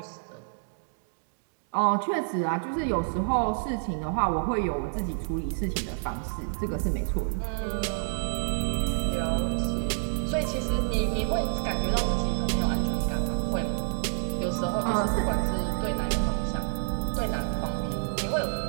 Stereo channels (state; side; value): silent; left; digital silence